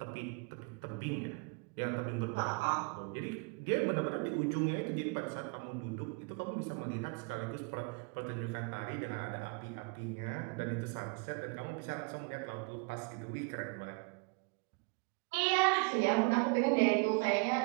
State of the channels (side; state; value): left; quieter; 31.5 dB